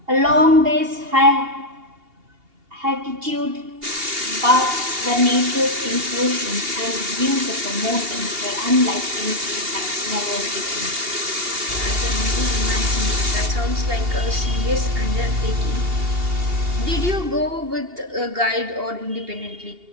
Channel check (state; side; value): late; left; 2.8 ms